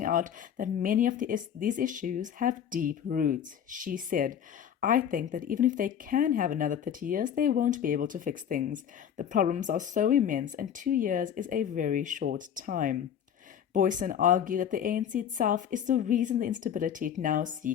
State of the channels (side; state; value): right; quieter; 8.9 dB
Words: out that many of these issues have deep roots. She said, "I think that even if they can have another 30 years, they won't be able to fix things. The problems are so immense, and 2 years is a very short time." Boyson argued that the ANC itself is the reason the instability it now